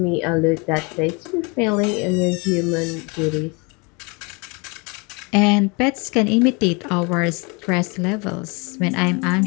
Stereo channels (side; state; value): right; quieter; 30.1 dB